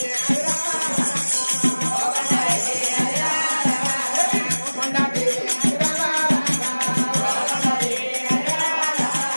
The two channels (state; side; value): inverted; both; correlation -1.00